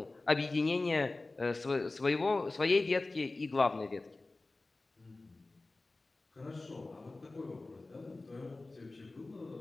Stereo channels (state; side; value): quieter; right; 3.2 dB